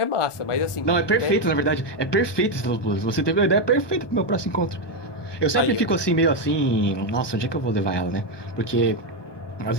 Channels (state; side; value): late; right; 1.2 ms